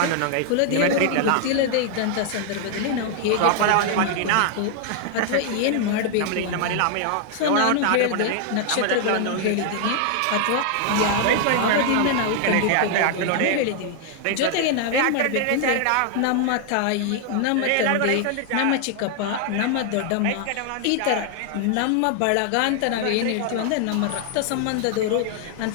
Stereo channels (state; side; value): different; both; correlation 0.00